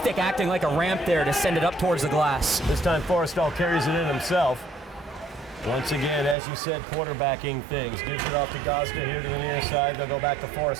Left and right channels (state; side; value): drops out; left; at 6.4 s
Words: acting like a ramp there to send it up towards the glass. This time Forrestal carries it in himself. Once again, as you said, quarterbacking things. Gives it off to Gosda here to the near side. They'll go back to